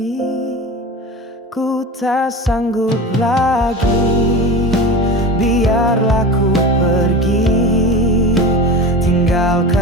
tak sanggup lagi. Biarlah ku pergi,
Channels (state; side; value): normal; both; correlation 0.30